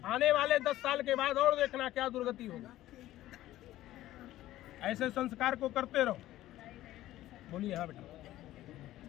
आने वाले 10 साल के बाद और देखना क्या दुर्गति होगा। ऐसे संस्कार को करते रहो। बोलिए। हाँ बेटा।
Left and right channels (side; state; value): right; quieter; 14.8 dB